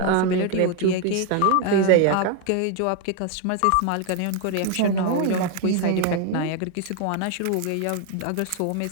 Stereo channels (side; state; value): both; different; correlation 0.01